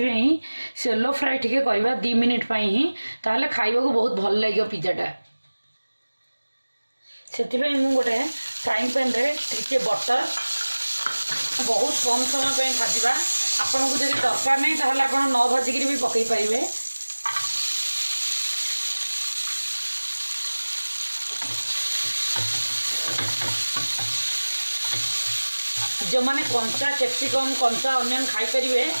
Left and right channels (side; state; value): both; inverted; correlation -1.00